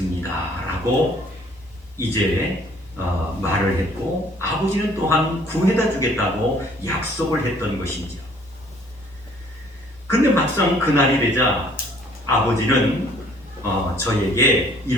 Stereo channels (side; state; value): both; normal; correlation 0.58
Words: 라고 이제 말을 했고, 아버지는 또한 구해다 주겠다고 약속을 했던 것이죠. 근데 막상 그날이 되자 아버지는 저에게